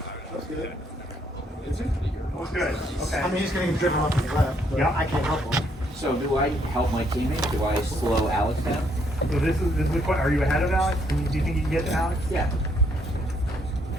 That's good. Who's good? Okay. I mean, he's getting driven off to the left, but Yeah. I can't help him. So do I help my teammate? Do I slow Alex down? So this is the question. Are you ahead of Alex? Do you think you can get to Alex? Yeah.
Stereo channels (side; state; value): both; normal; correlation 0.70